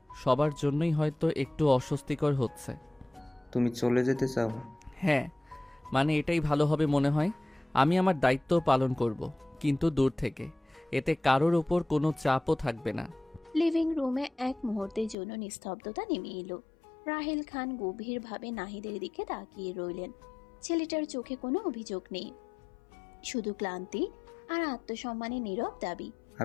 সবার জন্যই হয়তো একটু অস্বস্তিকর হচ্ছে। তুমি চলে যেতে চাও? হ্যাঁ, মানে এটাই ভালো হবে মনে হয়। আমি আমার দায়িত্ব পালন করব, কিন্তু দূর থেকে। এতে কারোর ওপর কোনো চাপও থাকবে না। লিভিং রুমে এক মুহূর্তের জন্য নিস্তব্ধতা নেমে এলো। রাহিল খান গভীরভাবে নাহিদের দিকে তাকিয়ে রইলেন। ছেলেটার চোখে কোনো অভিযোগ নেই, শুধু ক্লান্তি আর আত্মসম্মানের নীরব দাবি।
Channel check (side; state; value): right; drops out; at 15.2 s